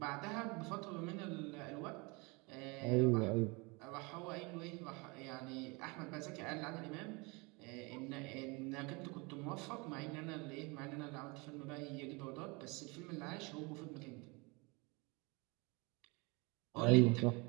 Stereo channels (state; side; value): quieter; left; 27.9 dB